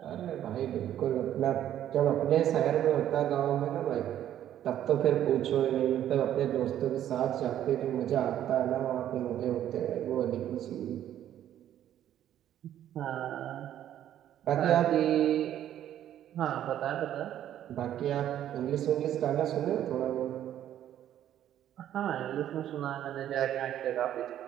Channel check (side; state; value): left; quieter; 11.3 dB